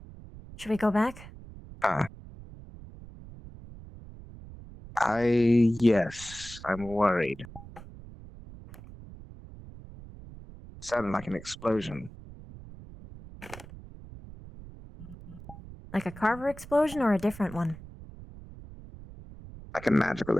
Should we go back? Yes, I'm worried. Sounded like an explosion. Like a Carver explosion or a different one? Like a magical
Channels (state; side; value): noise; right; rumble, 16 dB below the sound